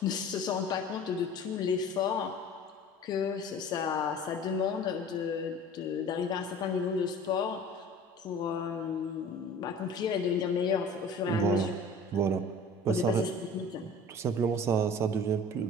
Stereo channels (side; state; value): both; normal; correlation 0.42